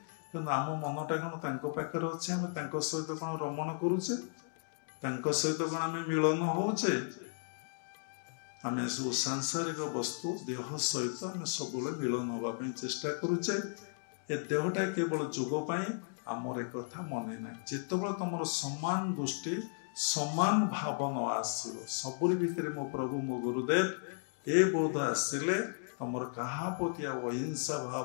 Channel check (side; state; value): right; silent; digital silence